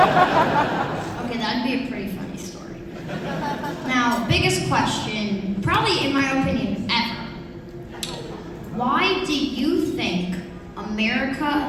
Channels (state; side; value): identical; both; correlation 1.00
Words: that'd be a pretty funny story. Now, biggest question, probably in my opinion, ever. Why do you think